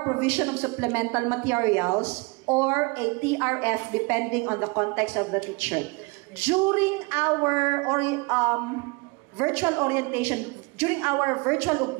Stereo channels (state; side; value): quieter; left; 28.0 dB